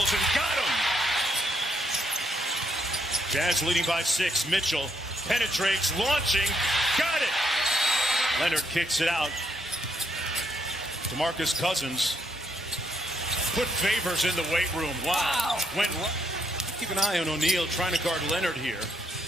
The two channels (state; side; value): normal; both; correlation 0.75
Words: and got him. Jazz leading by 6. Mitchell penetrates, launching, got it. Leonard kicks it out. DeMarcus Cousins put Favors in the weight room. Wow. Keep an eye on O'Neal trying to guard Leonard here